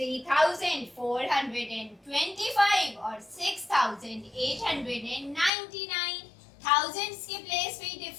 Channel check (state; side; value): drops out; right; at 5.5 s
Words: और 6899, थाउजेंड्स के प्लेस पे ही